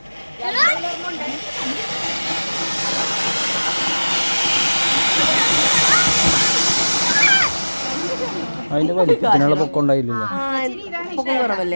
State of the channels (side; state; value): both; inverted; correlation -1.00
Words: അതിന്റെ വലിപ്പത്തിനുള്ള പൊക്കം ഉണ്ടായില്ലല്ലോ. പൊക്കം